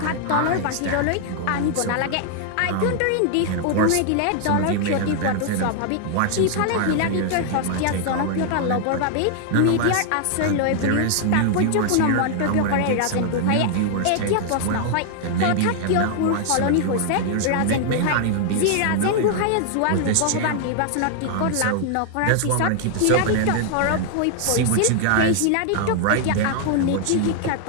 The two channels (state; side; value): different; both; correlation 0.00